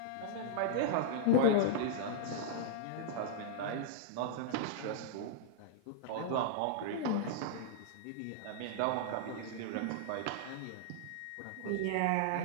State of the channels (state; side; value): different; both; correlation -0.02